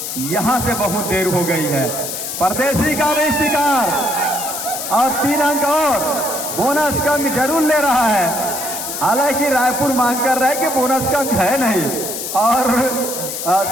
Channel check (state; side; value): noise; left; hiss, 5 dB below the sound